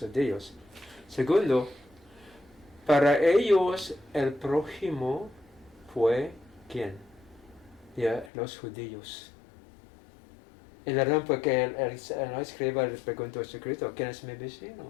Segundo, para ellos el prójimo fue ¿quién? Los judíos. Y la razón fue que el escriba le preguntó a Jesucristo, ¿quién es mi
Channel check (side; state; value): right; drops out; at 8.3 s